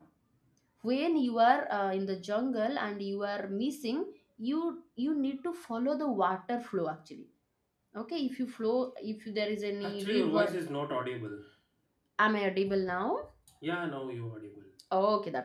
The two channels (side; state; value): both; identical; correlation 1.00